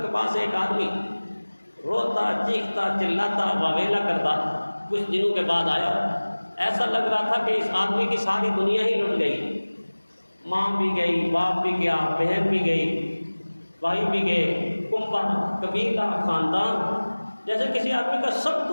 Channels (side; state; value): both; inverted; correlation -1.00